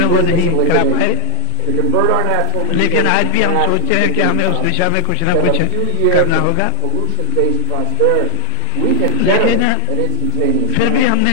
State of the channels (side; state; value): both; different; correlation 0.01